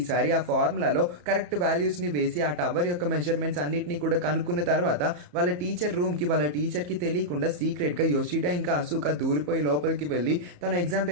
ఆ ఫార్ములాలో కరెక్ట్ వాల్యూస్ ని వేసి ఆ టవర్ యొక్క మెజర్మెంట్స్ అన్నిటిని కూడా కనుక్కున్న తర్వాత వాళ్ళ టీచర్ రూమ్ కి వాళ్ళ టీచర్ కి తెలియకుండా సీక్రెట్ గా యోషిడా ఇంకా అశోక దూరిపోయి లోపలికి వెళ్లి తన ఎగ్జామ్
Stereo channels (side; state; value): left; late; 34 ms